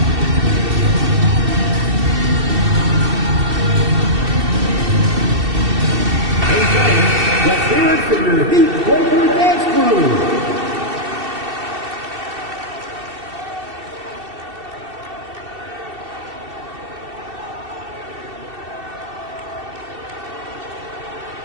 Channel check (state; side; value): late; left; 2.7 ms